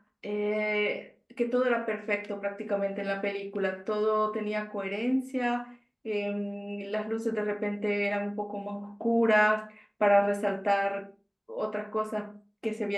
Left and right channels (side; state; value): both; identical; correlation 1.00